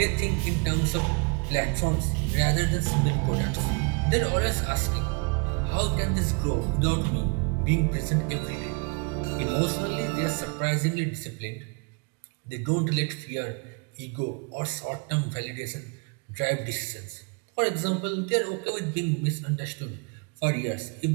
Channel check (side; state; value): left; quieter; 33.4 dB